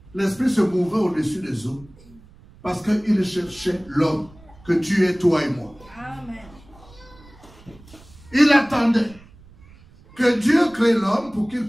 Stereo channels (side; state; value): right; noise; rumble, 24 dB below the sound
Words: L'Esprit se mouvait au-dessus des eaux parce qu'il cherchait l'homme que tu es, toi et moi. Amen. Il attendait que Dieu crée l'homme pour qu'il